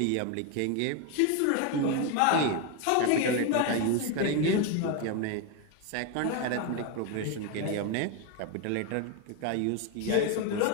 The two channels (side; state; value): both; different; correlation 0.02